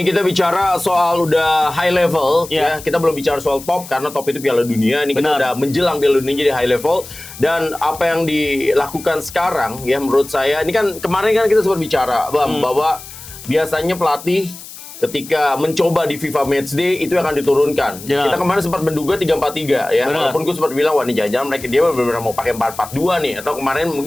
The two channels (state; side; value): noise; left; hiss, 15 dB below the sound